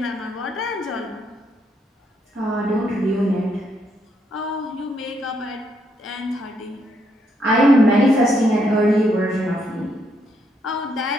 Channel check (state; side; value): normal; both; correlation 0.75